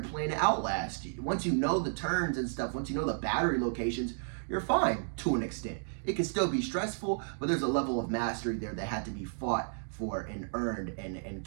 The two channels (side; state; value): left; silent; digital silence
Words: Outlast. Once you know the turns and stuff, once you know the battery locations, you're fine to an extent. It can still be stressful, but there's a level of mastery there that had to be fought for and earned and